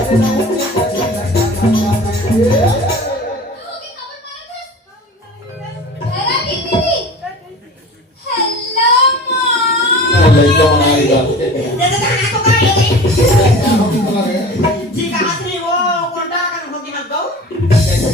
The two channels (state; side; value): normal; both; correlation 0.39